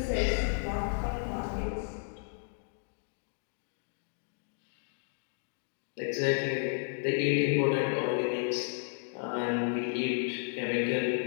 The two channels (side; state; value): right; silent; 56 dB below the other